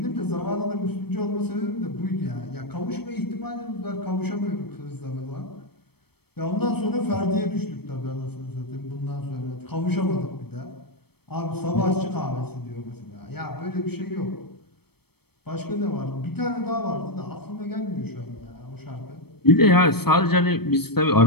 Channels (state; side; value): late; right; 0.97 ms